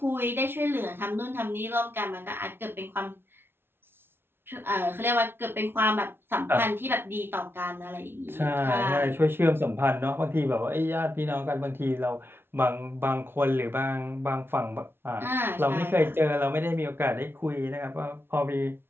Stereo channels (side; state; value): left; late; 0.11 ms